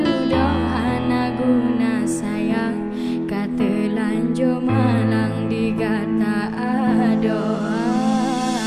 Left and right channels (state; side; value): identical; both; correlation 1.00